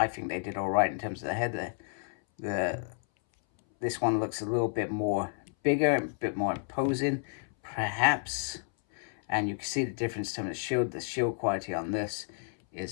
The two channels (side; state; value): right; silent; 57 dB below the other